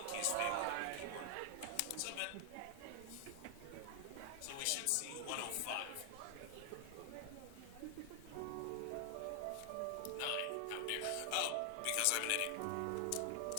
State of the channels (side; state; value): both; different; correlation 0.00